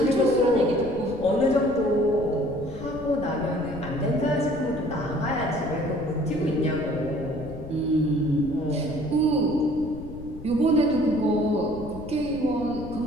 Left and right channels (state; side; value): noise; left; rumble, 13 dB below the sound